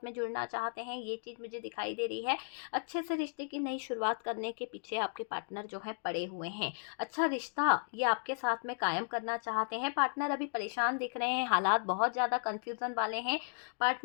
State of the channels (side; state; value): right; silent; digital silence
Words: में जुड़ना चाहते हैं, ये चीज़ मुझे दिखाई दे रही है। अच्छे से रिश्ते की नई शुरुआत करने के पीछे आपके पार्टनर जो है पड़े हुए हैं। अच्छा रिश्ता ये आपके साथ में कायम करना चाहते हैं। पार्टनर अभी परेशान दिख रहे हैं, हालात बहुत ज़्यादा कन्फ्यूज़न वाले हैं।